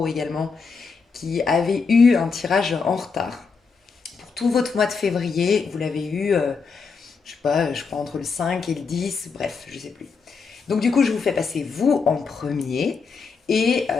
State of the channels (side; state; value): right; quieter; 5.1 dB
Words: également, qui avez eu un tirage en retard. Pour tout votre mois de février, vous l'avez eu, je sais pas, je crois entre le 5 et le 10, bref, je sais plus. Donc du coup, je vous fais passer vous en premier. Et